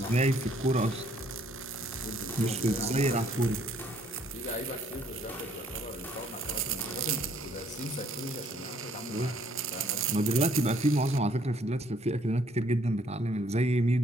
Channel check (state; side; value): normal; both; correlation 0.64